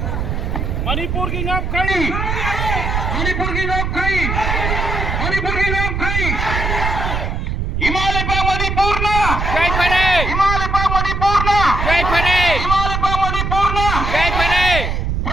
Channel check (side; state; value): right; noise; rumble, 1 dB below the sound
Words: मणिपुर की नाम खाई मणिपुर की नाम खाई मणिपुर की नाम खाई हिमालय पा मणिपुर ना जय फरे हिमालय पा मणिपुर ना जय फरे हिमालय पा मणिपुर ना जय फरे